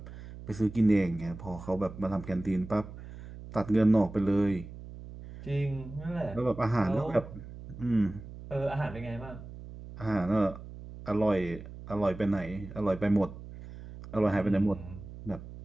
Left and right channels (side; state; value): right; noise; hum, 14 dB below the sound